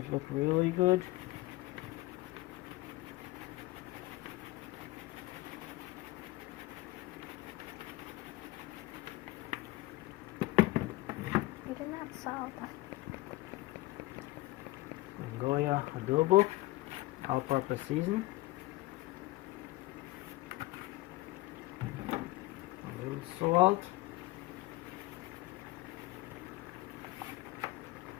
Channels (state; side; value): quieter; right; 19.2 dB